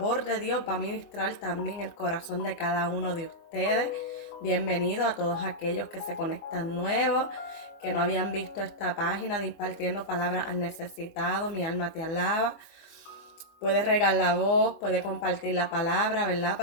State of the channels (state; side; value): late; right; 24 ms